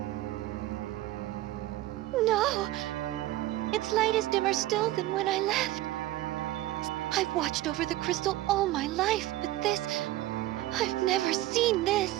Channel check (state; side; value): quieter; left; 15.8 dB